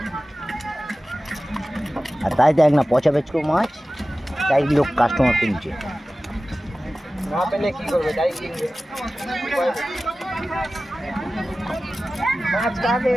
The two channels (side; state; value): both; normal; correlation 0.96